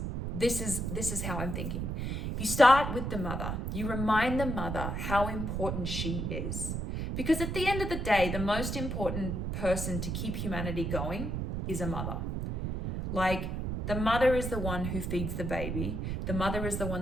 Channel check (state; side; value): noise; right; rumble, 2 dB below the sound